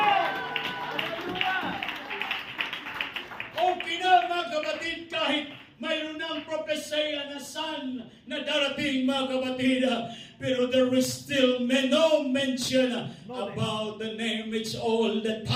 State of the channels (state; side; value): identical; both; correlation 1.00